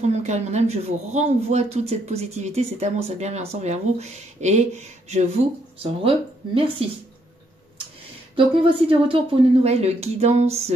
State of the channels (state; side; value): normal; both; correlation 0.73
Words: de mon cœur et de mon âme, je vous renvoie toute cette positivité, cet amour, cette bienveillance envers vous et je vous en remercie. Donc, me voici de retour pour une nouvelle guidance